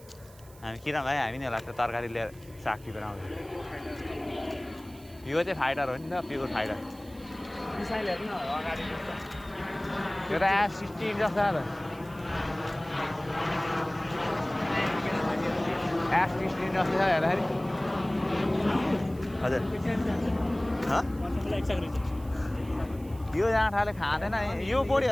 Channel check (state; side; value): noise; right; hiss, 24 dB below the sound